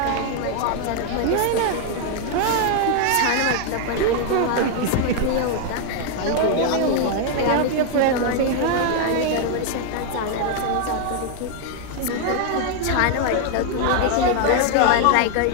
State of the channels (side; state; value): both; different; correlation 0.00